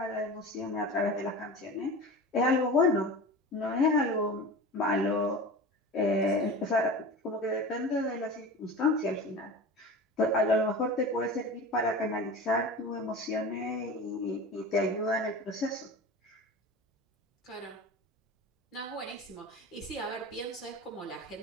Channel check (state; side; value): normal; both; correlation 0.33